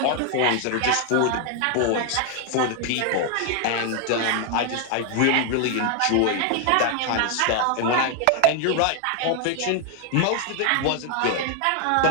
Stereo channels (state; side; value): different; both; correlation 0.00